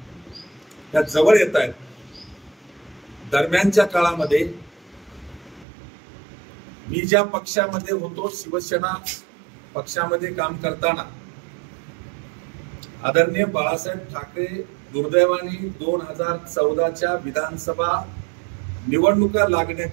त्या जवळ येत आहेत. दरम्यानच्या काळामध्ये मी ज्या पक्षामध्ये होतो, शिवसेना पक्षामध्ये काम करताना आदरणीय बाळासाहेब ठाकरे दुर्दैवाने 2014च्या विधानसभा निवडणुका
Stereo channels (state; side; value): drops out; left; at 5.7 s